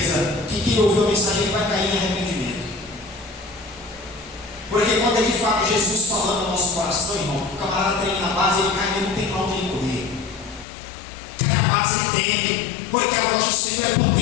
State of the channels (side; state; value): right; drops out; at 10.7 s